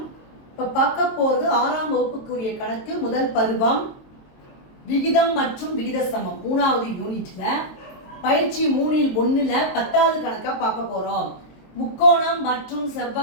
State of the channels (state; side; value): late; right; 22 ms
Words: இப்போ பார்க்க போகிறது 6ஆம் வகுப்புக்குரிய கணக்கு முதல் பருவம் விகிதம் மற்றும் விகித சமம் 3வது யூனிட்ல பயிற்சி 3ல் 1ல் 10வது கணக்கா பார்க்க போறோம். முக்கோணம் மற்றும்